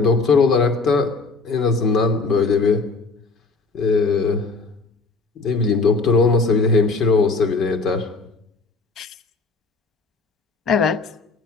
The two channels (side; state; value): right; quieter; 4.0 dB